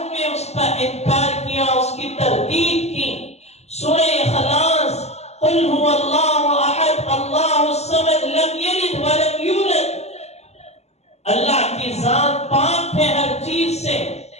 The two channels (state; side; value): late; right; 0.31 ms